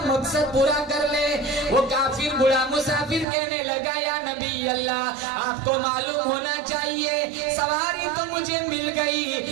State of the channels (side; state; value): left; drops out; at 3.2 s